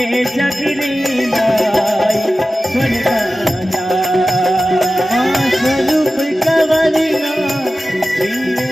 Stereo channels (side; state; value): both; normal; correlation 0.95